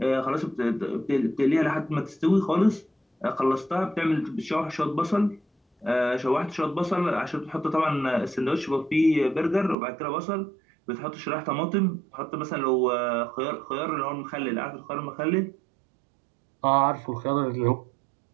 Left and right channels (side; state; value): left; drops out; at 9.8 s